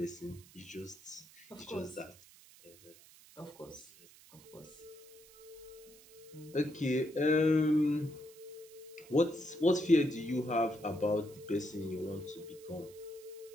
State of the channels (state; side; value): noise; right; hiss, 22 dB below the sound